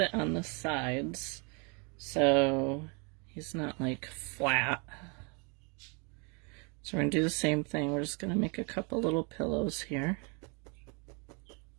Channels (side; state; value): left; quieter; 33.7 dB